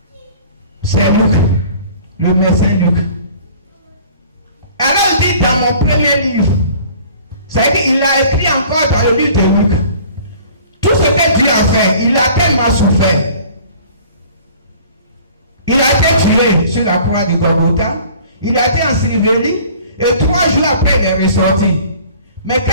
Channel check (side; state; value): both; inverted; correlation -0.49